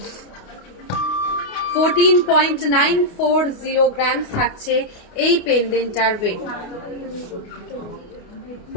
14.940 গ্রামস থাকছে এই পেন্ডেন্টটার ওয়েট।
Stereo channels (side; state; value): right; late; 29 ms